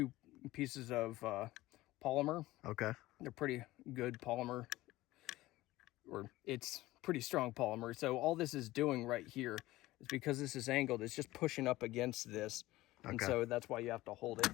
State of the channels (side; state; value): right; quieter; 17.7 dB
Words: pieces of polymer. They're pretty good polymer, or it's pretty strong polymer. So all this is doing right here is, because this is angled, it's just pushing up against this. And so that's why you have to hold it.